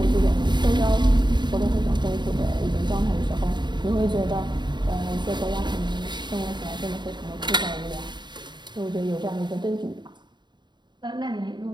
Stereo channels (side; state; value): left; late; 0.22 ms